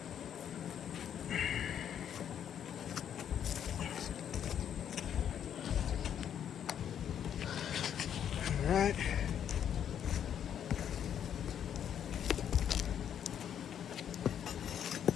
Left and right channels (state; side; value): quieter; right; 9.2 dB